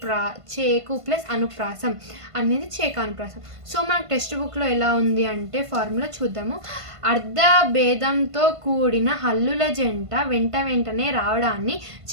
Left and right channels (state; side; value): late; left; 1.5 ms